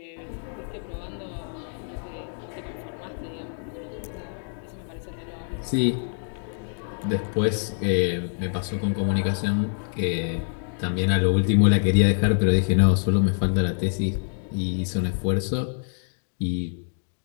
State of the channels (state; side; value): silent; right; 61 dB below the other